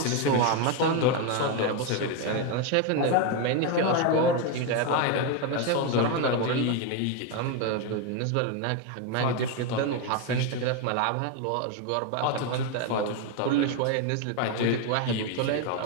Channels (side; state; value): both; different; correlation 0.02